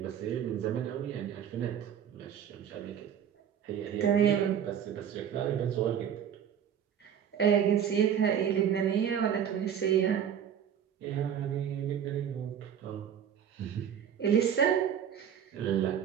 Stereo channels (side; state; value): left; quieter; 8.8 dB